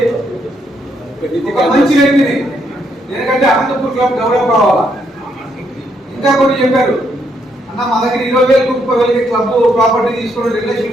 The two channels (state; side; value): normal; both; correlation 0.75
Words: ఒక మంచి వ్యక్తిని, ఎందుకంటే అనంతపూర్ క్లబ్ డెవలప్ కావాలా. ఇంకా కొన్ని చెప్పారు అన్న మా దగ్గర 20,000 30,000 క్లబ్ ప్రాపర్టీ తీసుకుని